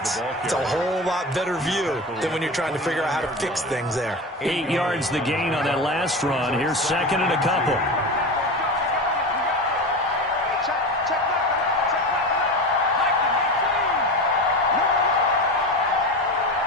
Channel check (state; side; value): normal; both; correlation 0.26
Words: it's a whole lot better view than when you're trying to figure out how to fix things there. 8 yards the gain on that last run. Here's 2nd and a couple.